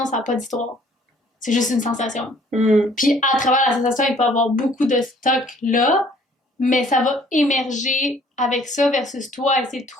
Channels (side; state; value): both; normal; correlation 0.58